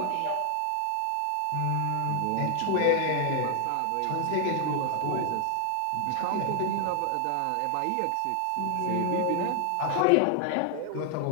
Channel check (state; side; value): different; both; correlation 0.00